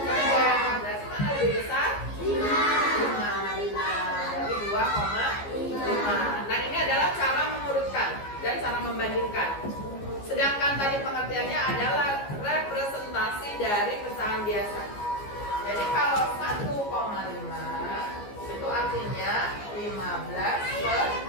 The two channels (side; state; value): right; late; 15 ms